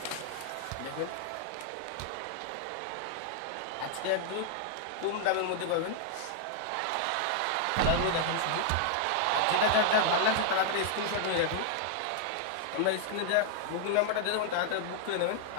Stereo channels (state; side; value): different; both; correlation -0.01